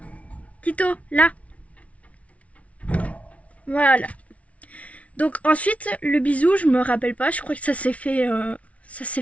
Tito, là. Voilà. Donc ensuite, le bisou, je me rappelle pas. Je crois que ça s'est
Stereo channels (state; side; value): late; right; 0.065 ms